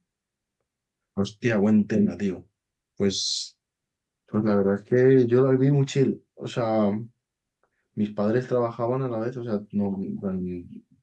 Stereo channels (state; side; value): identical; both; correlation 1.00